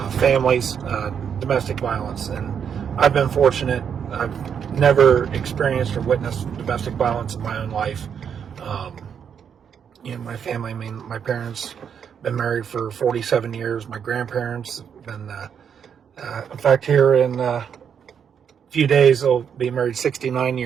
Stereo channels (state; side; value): quieter; left; 7.6 dB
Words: families, domestic violence, and I've been fortunate. I've never experienced or witnessed domestic violence in my own life. My family. I mean, my parents been married for 47 years. My grandparents been. In fact, here in a few days, they'll be married 69